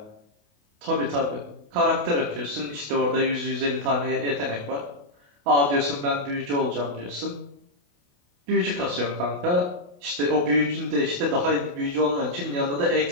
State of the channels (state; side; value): late; left; 28 ms